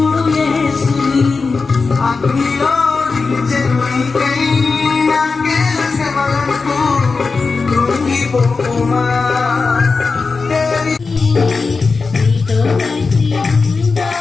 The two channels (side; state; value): right; quieter; 4.4 dB